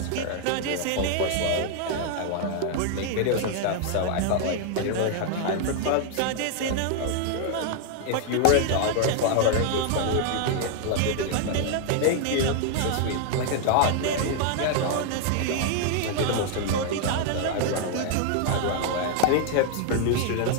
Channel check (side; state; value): both; different; correlation 0.00